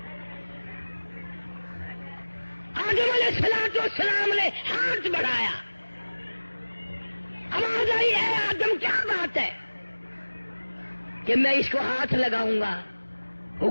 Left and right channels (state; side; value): inverted; both; correlation -1.00